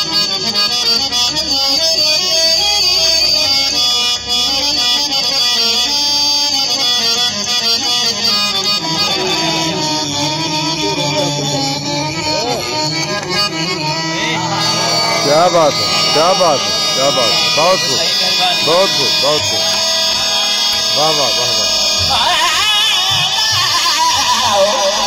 क्या बात है, क्या बात है, क्या बात है। बहुत खूब, बहुत खूब, बहुत खूब। वाह वाह वाह वाह।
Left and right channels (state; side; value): identical; both; correlation 1.00